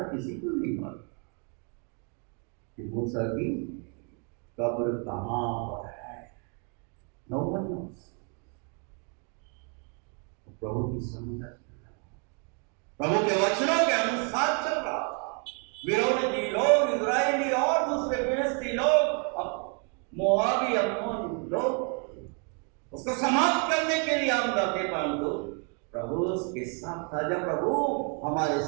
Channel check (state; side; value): quieter; left; 38.3 dB